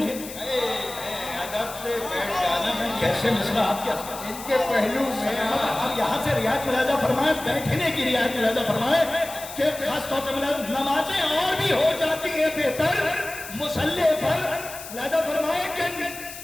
ادب سے بیٹھ جانا میں کیسے مصرع آپ کیا ان کے پہلو میں. اب یہاں سے رعایت ملاحظہ فرمائیں، بیٹھنے کی رعایت ملاحظہ فرمائیں کہ خاص طور سے نمازیں اور بھی ہو جاتی ہیں بہتر مسلح پر. ملاحظہ فرمائیں کہ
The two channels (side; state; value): left; noise; hiss, 12 dB below the sound